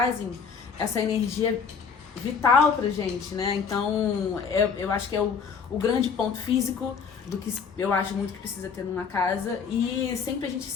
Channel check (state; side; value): quieter; right; 6.1 dB